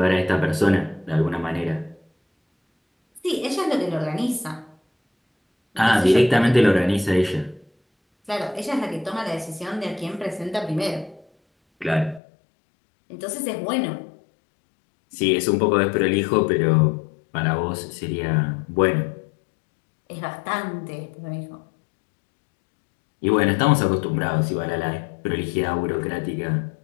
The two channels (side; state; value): right; drops out; at 12.2 s